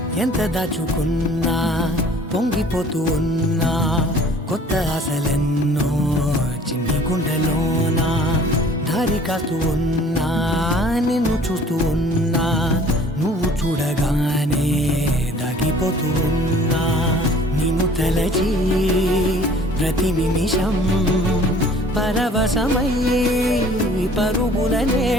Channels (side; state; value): both; normal; correlation 0.52